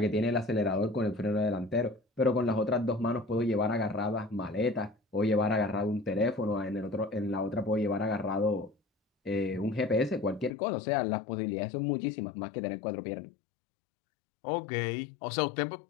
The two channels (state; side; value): drops out; right; at 10.5 s